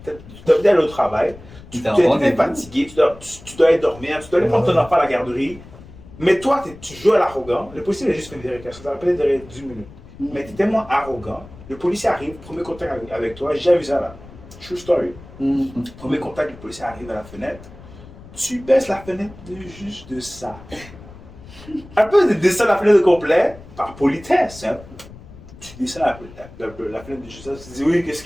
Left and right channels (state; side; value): noise; left; rumble, 19 dB below the sound